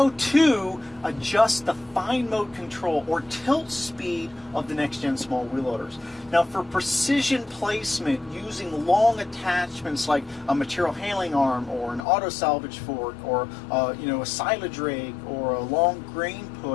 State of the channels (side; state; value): right; drops out; at 12.0 s